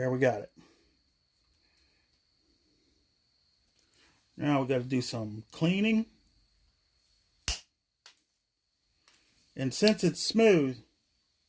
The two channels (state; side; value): identical; both; correlation 1.00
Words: we got it. Now we got to do some cleaning. And since it's smooth,